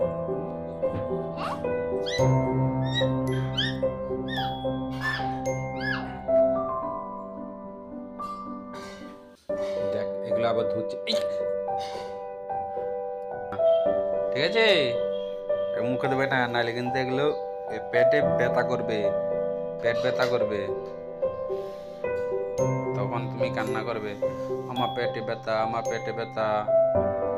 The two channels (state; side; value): identical; both; correlation 1.00